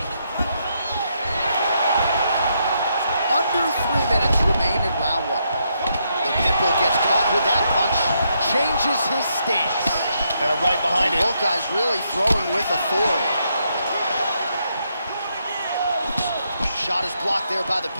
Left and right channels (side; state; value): both; inverted; correlation -0.78